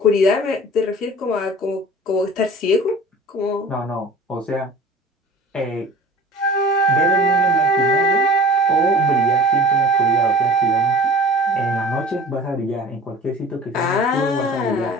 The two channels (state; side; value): normal; both; correlation 0.42